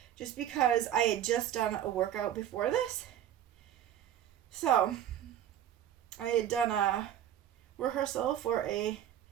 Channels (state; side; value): quieter; left; 10.9 dB